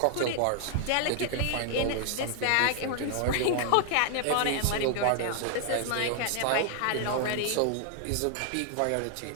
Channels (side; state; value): both; different; correlation 0.00